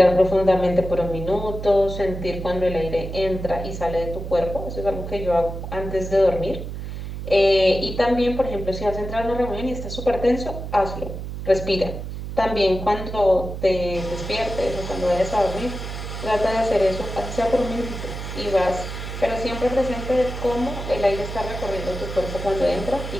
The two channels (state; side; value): noise; right; hum, 7 dB below the sound